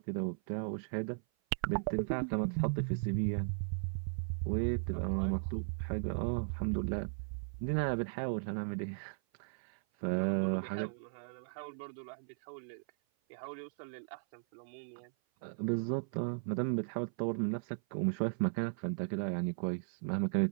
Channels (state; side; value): silent; left; 53 dB below the other